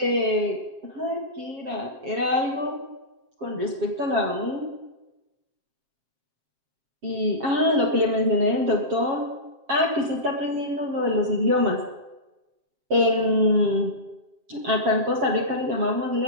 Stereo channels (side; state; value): left; late; 7.2 ms